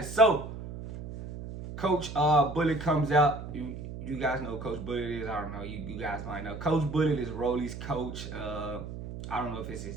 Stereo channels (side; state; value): right; noise; hum, 9 dB below the sound